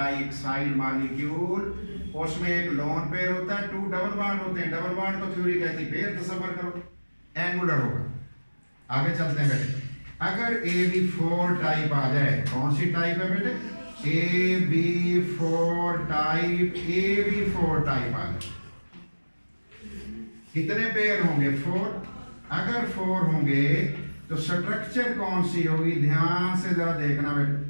मॉलिक्यूल, उसमें एक लोन पेयर होता है, 2 डबल बॉन्ड होते हैं। डबल बॉन्ड तो थ्योरी कहती है, पेयर तसव्वुर करो, एंगुलर होगा। आगे चलते हैं बेटे। अगर AB4 टाइप आ जाए, कौन सी टाइप है बेटे? AB4 type. AB4 टाइप आ जाए, कितने पेयर होंगे? 4। अगर 4 होंगे तो स्ट्रक्चर कौन सी होगी? ध्यान से जरा देखना बेटे।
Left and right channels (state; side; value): inverted; both; correlation -1.00